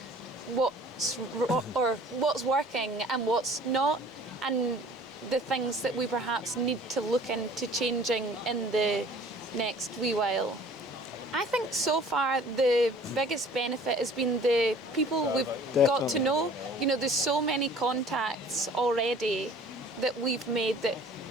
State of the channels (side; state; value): both; normal; correlation 0.50